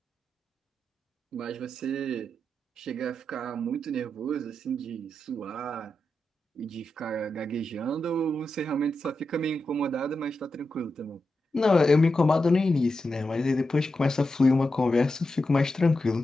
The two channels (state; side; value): normal; both; correlation 0.89